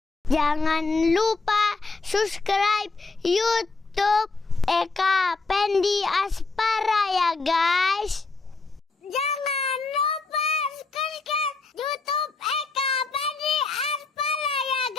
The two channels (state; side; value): quieter; right; 3.9 dB